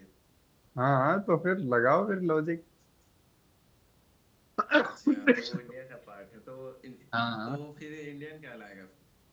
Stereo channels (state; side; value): identical; both; correlation 1.00